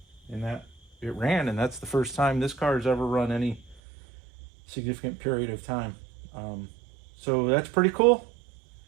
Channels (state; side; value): drops out; left; at 3.8 s